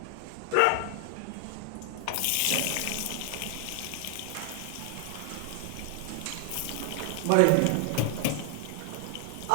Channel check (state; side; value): different; both; correlation 0.00